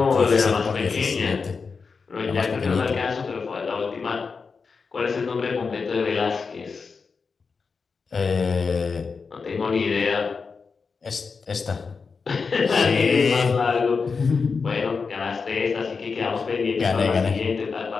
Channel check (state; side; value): quieter; right; 5.0 dB